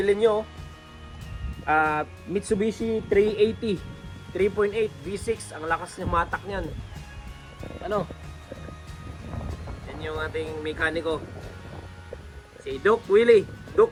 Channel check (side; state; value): both; identical; correlation 1.00